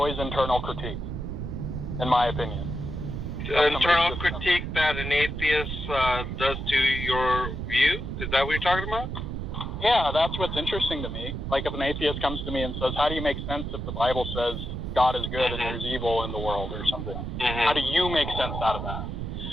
internal critique, in my opinion. Internal critique that an atheist does to your view? Is that what you're talking about? Yeah, that's what's interesting to me. Like if an atheist comes to me and says, how do you make sense if the Bible says God is good and there's evil in the world or something? How do you make sense out of that?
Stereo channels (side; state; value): right; noise; rumble, 5 dB below the sound